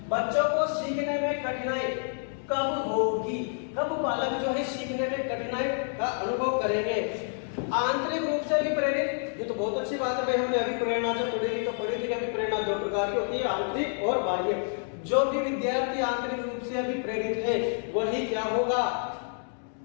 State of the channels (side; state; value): right; silent; 59 dB below the other